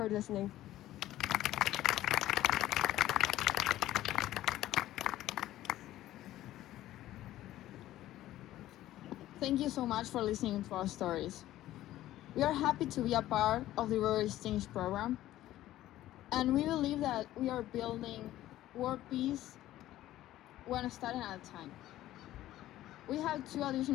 listening. Thank you so much for listening to our stories. We are happy to be a part of the Rotary Exchange program, and we believe that we are building world peace one study at a time. We have 2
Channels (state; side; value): quieter; right; 14.3 dB